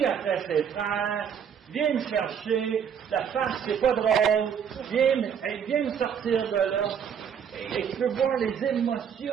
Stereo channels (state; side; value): quieter; left; 7.8 dB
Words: après ses frères, viens me chercher, la face, c'est pas drôle, viens me sortir de là. Et tu peux voir les